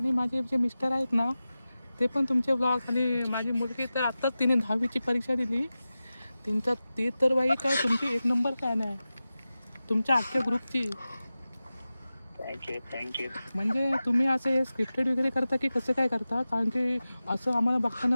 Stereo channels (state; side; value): inverted; both; correlation -0.95